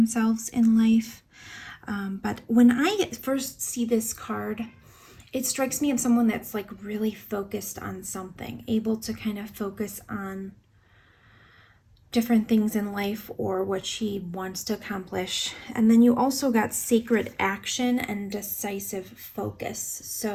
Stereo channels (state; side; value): identical; both; correlation 1.00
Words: in life. But when I first see this card, it strikes me as someone that's like really focused on something, able to kind of focus on different things in life or what she wants to accomplish. And then you also got sacred action and decisive focus.